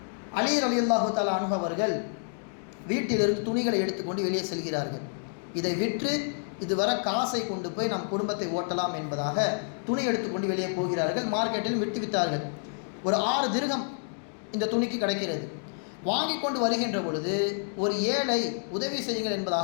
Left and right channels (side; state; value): right; silent; digital silence